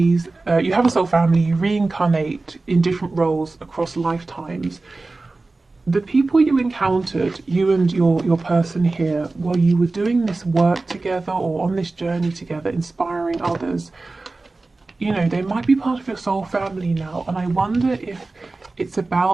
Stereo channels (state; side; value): quieter; left; 3.4 dB